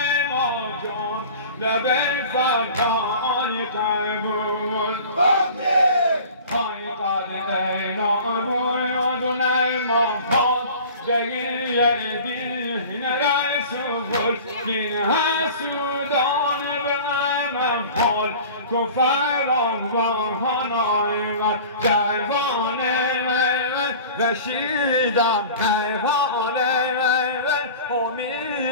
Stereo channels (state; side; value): inverted; both; correlation -0.40